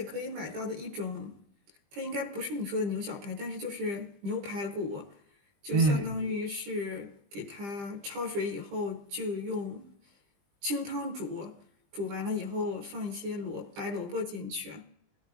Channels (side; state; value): left; late; 20 ms